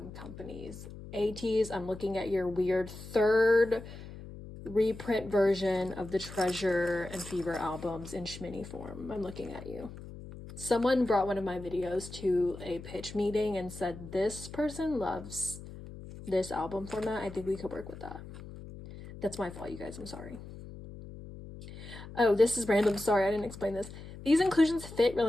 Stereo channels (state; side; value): noise; left; hum, 13 dB below the sound